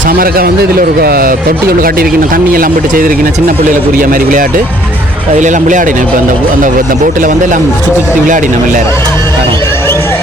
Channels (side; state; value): both; normal; correlation 0.61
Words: சமரக்கா வந்து இதில் ஒரு தொட்டி ஒன்று காட்டியிருக்கீங்க. தண்ணி எல்லாம் போட்டு செய்திருக்கீங்க. சின்ன பிள்ளைகளுக்குரிய மாதிரி விளையாட்டு. அதில் எல்லாம் விளையாடினோம். இப்போ அந்த போட்டில் வந்து எல்லாம் சுற்றி சுற்றி விளையாடினோம் எல்லாரும்.